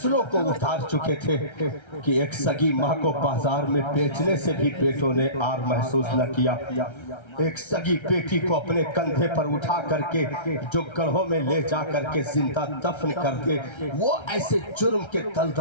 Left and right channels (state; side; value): late; right; 1.3 ms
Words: کو اتار چکے تھے کہ ایک سگی ماں کو بازار میں بیچنے سے بھی بیٹوں نے آر محسوس نہ کیا۔ ایک سگی بیٹی کو اپنے کندھے پر اٹھا کر کے جو گڑھوں میں لے جا کر کے زندہ دفن کر دے، وہ ایسے جرم کے